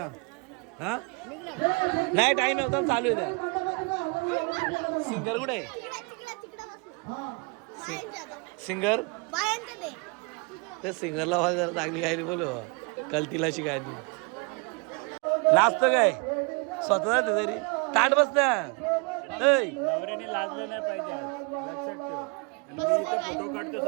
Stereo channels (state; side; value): quieter; left; 31.9 dB